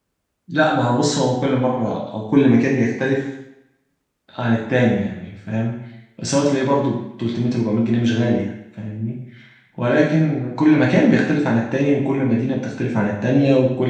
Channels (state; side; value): identical; both; correlation 1.00